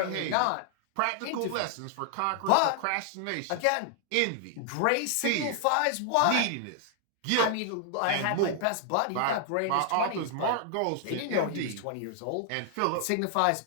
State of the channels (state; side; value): different; both; correlation 0.00